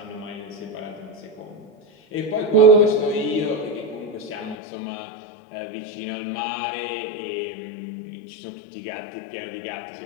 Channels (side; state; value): right; drops out; at 4.5 s